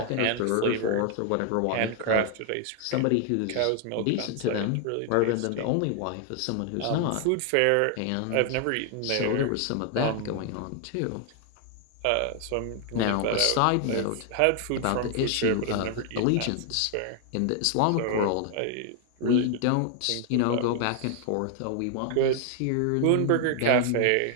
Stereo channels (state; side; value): different; both; correlation 0.00